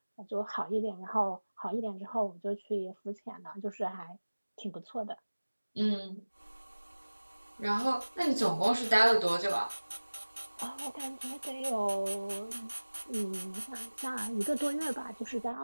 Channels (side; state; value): both; inverted; correlation -1.00